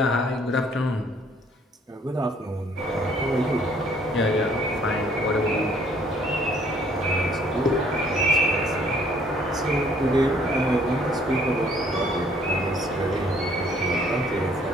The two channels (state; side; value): normal; both; correlation 0.61